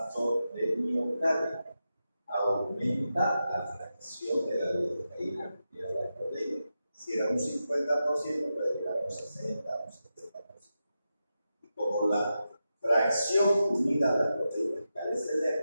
de miocardio. Aumenta la fracción de la lidocaína y de la proteína. Si era un 50%, puede llegar a un 60%, un 70%. Y como la fracción unida a las proteínas carece de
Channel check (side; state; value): both; inverted; correlation -0.89